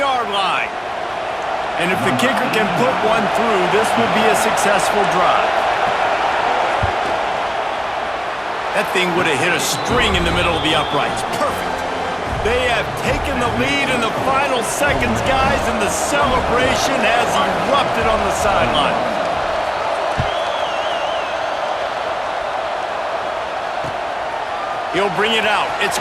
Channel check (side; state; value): both; identical; correlation 1.00